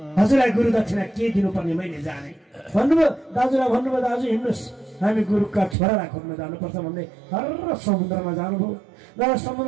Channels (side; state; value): left; drops out; at 5.8 s